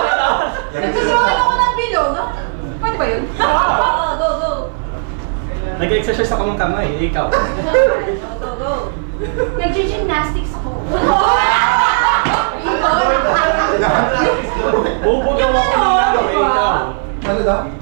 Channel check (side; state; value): left; silent; 57 dB below the other